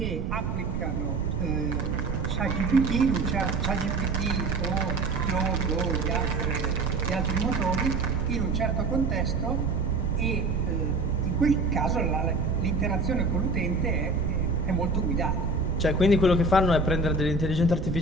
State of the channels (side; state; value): right; noise; rumble, 3 dB below the sound